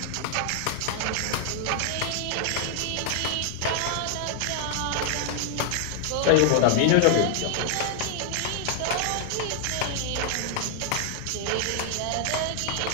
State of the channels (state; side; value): different; both; correlation 0.00